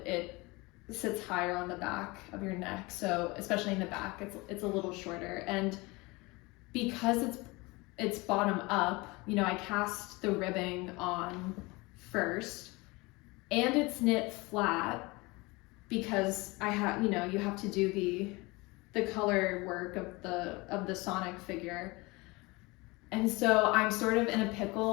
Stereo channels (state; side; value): quieter; right; 24.1 dB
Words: it sits higher on the back of your neck, so especially in the back it's a little shorter. And because it's bottom up, you know, I cast the ribbing on first, and it's knit flat because I have, you know, you have to do the color work of the Sonic figure. And so I'm sort of in a